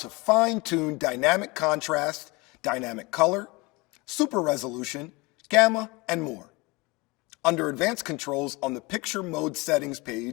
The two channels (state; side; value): quieter; right; 25.2 dB